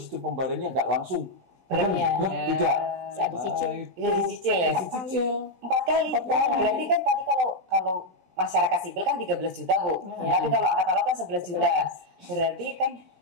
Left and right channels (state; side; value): late; left; 16 ms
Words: pembayarannya nggak langsung. Tidak. Bisa dicicil. Dicicil. 4 kali. Berarti kan tadi kalau masyarakat sipil kan 13 juta, Bu. Tapi kalau angkatan laut kan 11 juta. Berarti kan